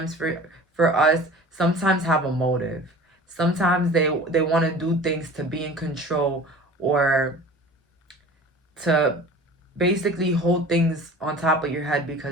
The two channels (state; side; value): normal; both; correlation 0.41